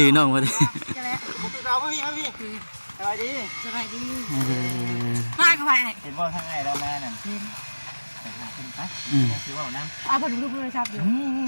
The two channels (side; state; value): both; inverted; correlation -1.00